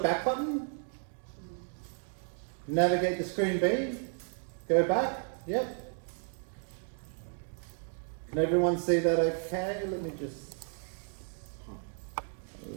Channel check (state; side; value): silent; left; 56 dB below the other